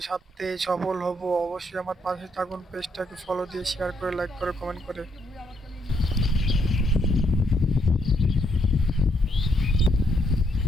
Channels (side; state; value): both; normal; correlation 0.74